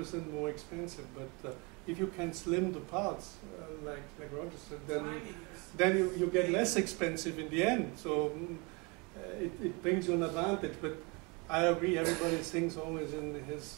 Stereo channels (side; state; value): left; quieter; 29.1 dB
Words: more expensive, but if you can slim the parts, like Roger said, then you get less expensive in the end. So it brings you an advantage. But I agree, everybody thinks always in